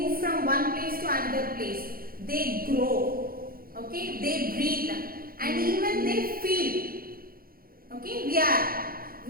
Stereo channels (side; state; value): left; late; 0.42 ms